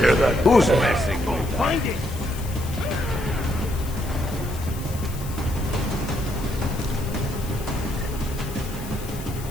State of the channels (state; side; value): noise; left; hiss, 15 dB below the sound